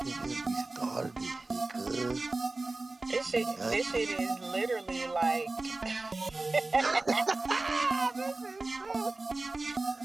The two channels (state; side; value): quieter; left; 3.2 dB